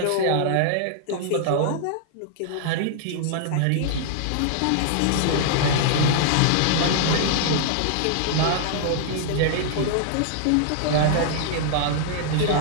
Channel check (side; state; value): both; different; correlation -0.01